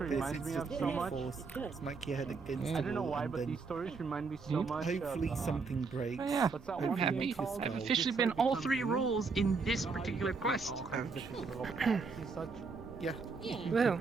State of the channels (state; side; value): quieter; left; 4.6 dB